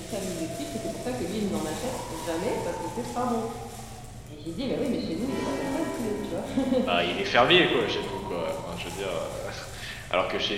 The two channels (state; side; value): identical; both; correlation 1.00